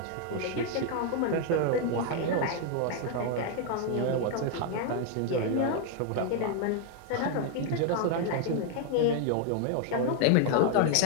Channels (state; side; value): different; both; correlation 0.00